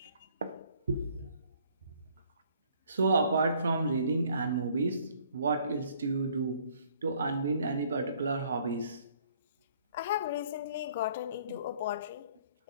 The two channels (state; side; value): inverted; both; correlation -0.60